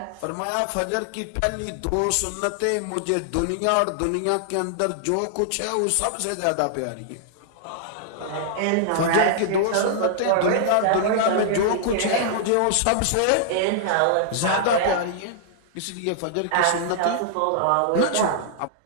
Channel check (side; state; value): both; different; correlation -0.01